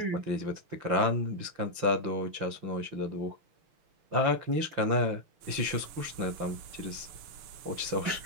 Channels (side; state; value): left; late; 5.8 ms